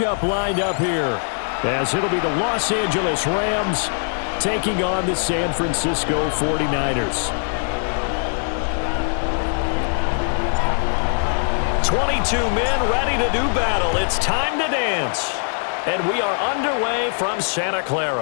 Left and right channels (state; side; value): silent; right; 65 dB below the other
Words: lined up here, as it'll be the Los Angeles Rams taking on the San Francisco 49ers. 22 men ready to do battle. It's time to dance. And we are underway from Santa